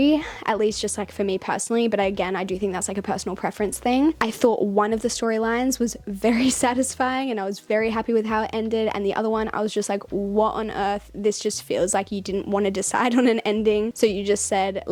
at least just like for me personally, but again, I do think that's like a personal preference thing. I thought one of the storylines was very satisfying and I was very happy with how it ended, and the other one I was just like, what on earth? This just feels like you didn't want to decide on an ending, so you just said,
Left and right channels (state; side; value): identical; both; correlation 1.00